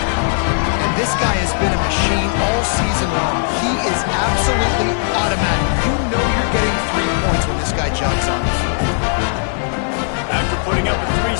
this guy has been a machine all season long. He is absolutely automatic. You know you're getting 3 points when this guy jogs on the field. After putting up a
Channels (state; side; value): silent; right; 68 dB below the other